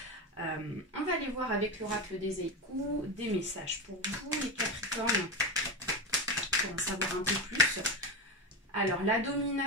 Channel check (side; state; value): both; normal; correlation 0.18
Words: On va aller voir avec l'oracle des Haïkus des messages pour vous les Capricornes, pour en savoir un peu plus. Alors la